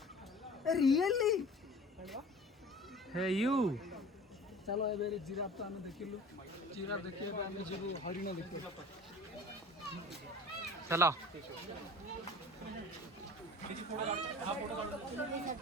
रियली हे यू चलो ए जिराफ तो आम देखिलु। जिराफ देखिए आम जीवु हरिण देखिए। चलो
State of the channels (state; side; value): normal; both; correlation 0.43